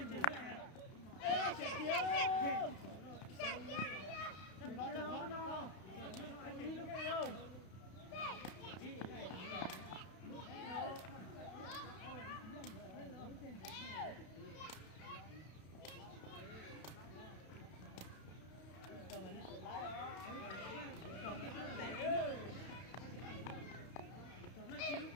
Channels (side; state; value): right; late; 31 ms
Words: Ê, chạy kìa. Có nó. Anh đi lúc này đâu?